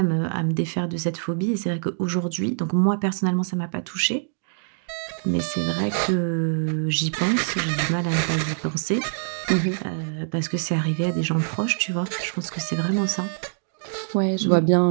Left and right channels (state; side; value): silent; left; digital silence